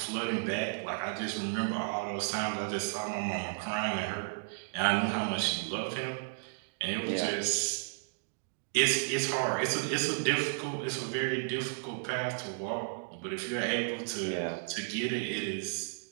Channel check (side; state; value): left; silent; digital silence